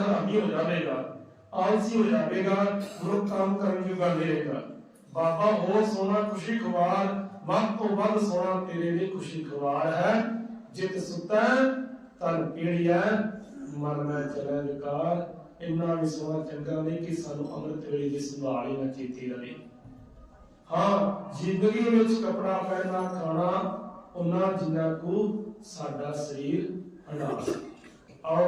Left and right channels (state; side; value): identical; both; correlation 1.00